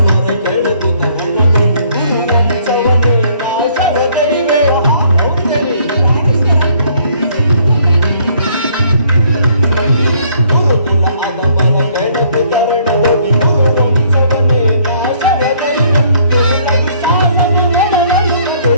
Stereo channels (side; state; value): both; inverted; correlation -0.63